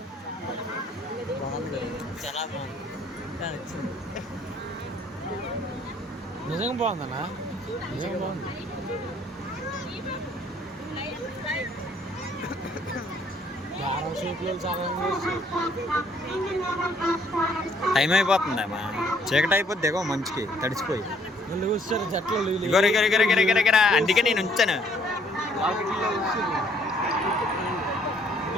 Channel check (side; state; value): both; normal; correlation 0.63